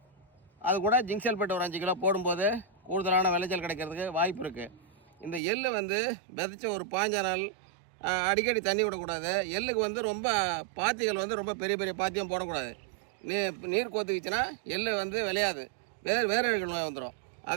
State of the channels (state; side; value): drops out; left; at 5.4 s